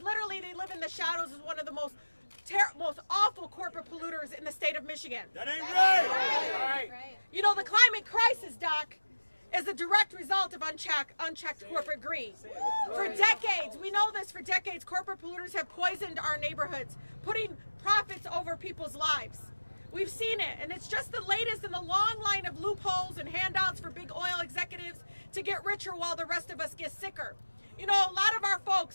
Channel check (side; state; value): both; inverted; correlation -1.00